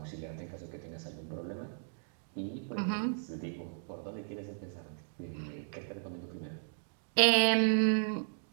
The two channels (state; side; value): silent; left; digital silence